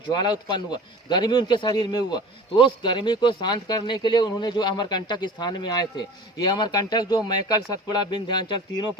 उत्पन्न हुआ, गर्मी उनके शरीर में हुआ, तो उस गर्मी को शांत करने के लिए उन्होंने जो अमरकंटक स्थान में आए थे। ये अमरकंटक जो मैकल, सतपुड़ा, विंध्याचल तीनों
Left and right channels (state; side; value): normal; both; correlation 0.40